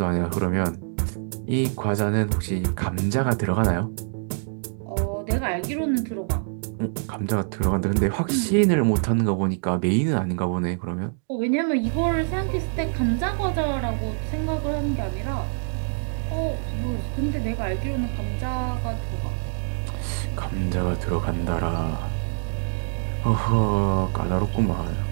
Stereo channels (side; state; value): left; silent; digital silence